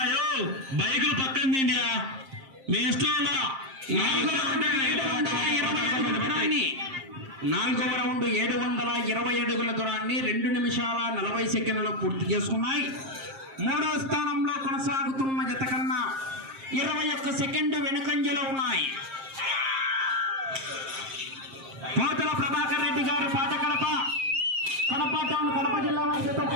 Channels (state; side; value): late; left; 7.5 ms